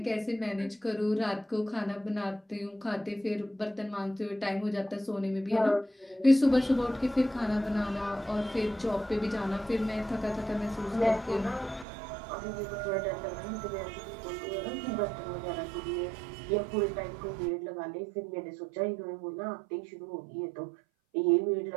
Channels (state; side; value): drops out; left; at 11.9 s